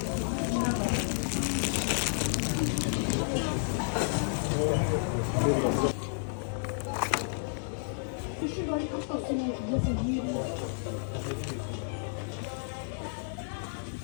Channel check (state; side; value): silent; right; digital silence